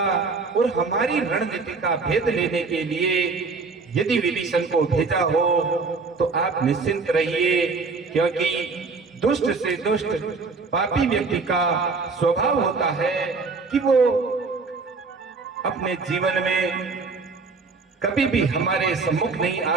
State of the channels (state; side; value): quieter; left; 4.3 dB